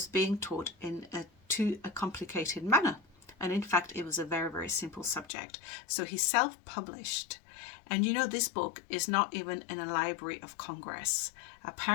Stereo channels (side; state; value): right; drops out; at 5.2 s